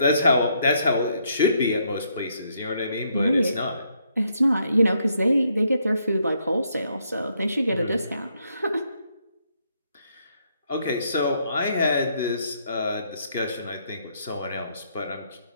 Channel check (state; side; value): inverted; both; correlation -0.73